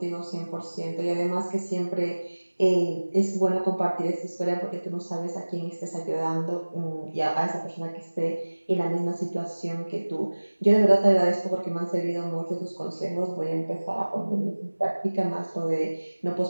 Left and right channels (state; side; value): inverted; both; correlation -1.00